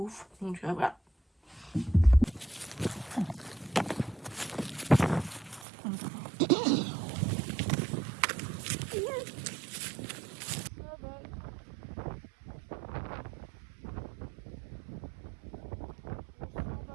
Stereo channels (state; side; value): drops out; left; at 5.7 s